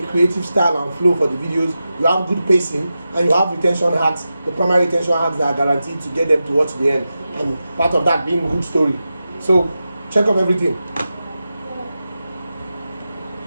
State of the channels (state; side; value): inverted; both; correlation -0.92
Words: creative style and flow for the videos, you have good pacing, and you have retention hacks, the primary retention hacks that are guaranteed to get them to watch the end. And part of that being good story. So check up everything.